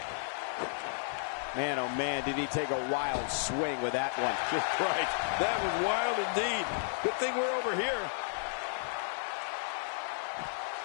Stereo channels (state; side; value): silent; right; 56 dB below the other